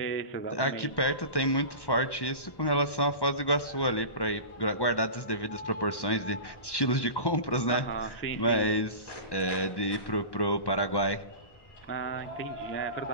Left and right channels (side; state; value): right; late; 1.1 ms